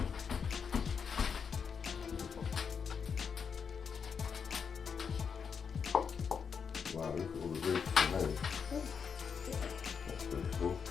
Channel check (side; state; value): right; quieter; 6.4 dB